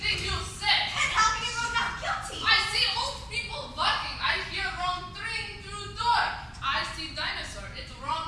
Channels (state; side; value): identical; both; correlation 1.00